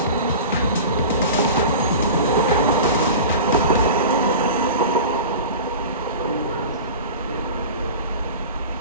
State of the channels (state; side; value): inverted; both; correlation -0.34